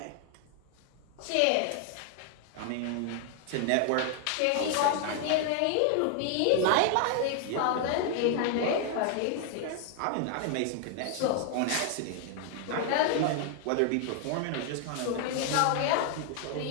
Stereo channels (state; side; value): different; both; correlation 0.00